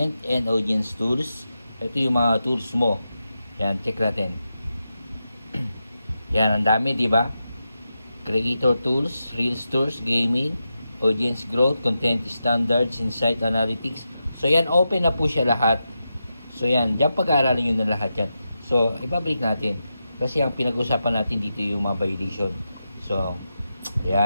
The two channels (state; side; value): inverted; both; correlation -0.89